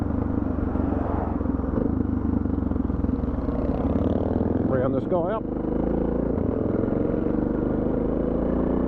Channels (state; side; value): identical; both; correlation 1.00